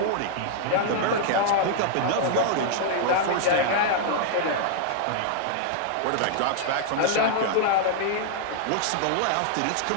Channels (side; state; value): both; different; correlation -0.01